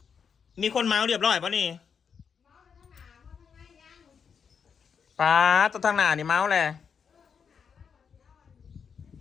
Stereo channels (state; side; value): quieter; right; 6.6 dB